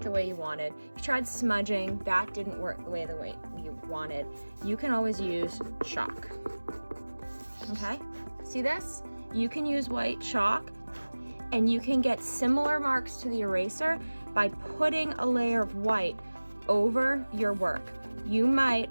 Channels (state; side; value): inverted; both; correlation -1.00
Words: the way you wanted. You tried smudging, that didn't work the way you wanted. You can always use chalk. Okay, see this? You can use white chalk and you can get similar marks to the eraser by putting a layer of white over your work. You